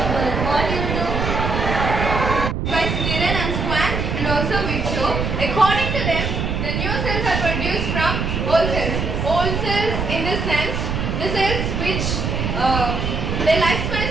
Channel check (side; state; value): right; noise; rumble, 2 dB below the sound